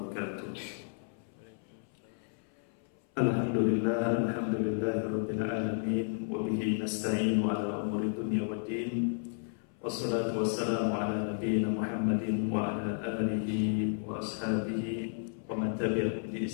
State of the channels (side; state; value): right; silent; 56 dB below the other